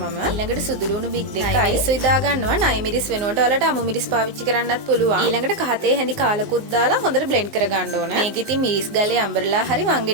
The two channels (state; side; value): late; left; 19 ms